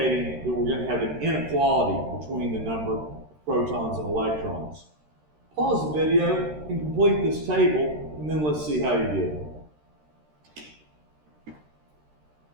that we're going to have an inequality between the number of protons and electrons. Pause the video and complete this table, and then let's see how you did.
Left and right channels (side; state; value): left; late; 13 ms